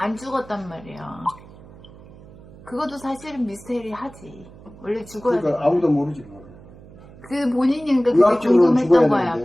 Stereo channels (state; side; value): noise; right; hum, 20 dB below the sound